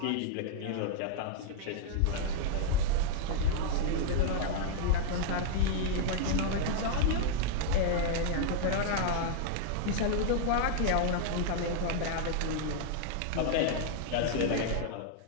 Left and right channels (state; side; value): different; both; correlation -0.01